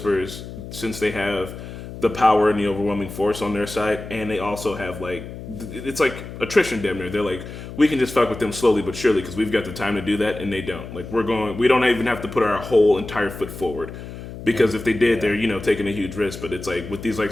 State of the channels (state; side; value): noise; left; hum, 11 dB below the sound